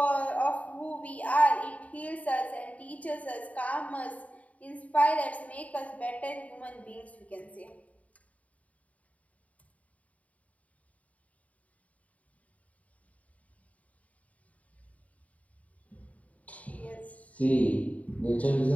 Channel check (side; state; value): right; late; 0.069 ms